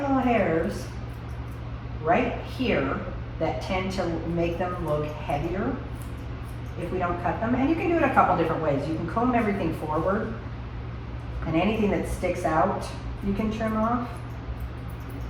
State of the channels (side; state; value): both; identical; correlation 1.00